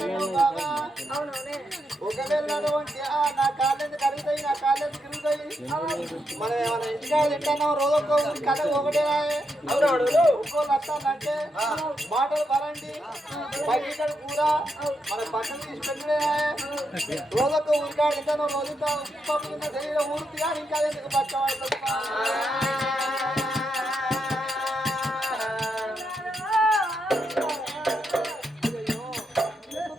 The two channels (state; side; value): normal; both; correlation 0.82